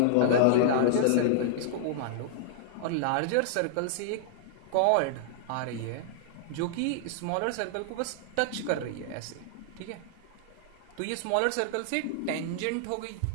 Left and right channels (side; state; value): both; different; correlation -0.01